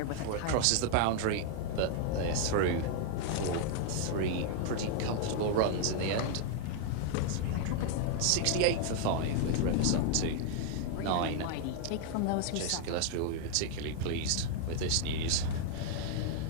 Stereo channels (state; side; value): different; both; correlation 0.00